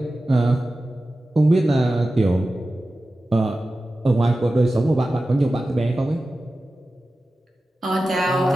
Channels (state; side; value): normal; both; correlation 0.94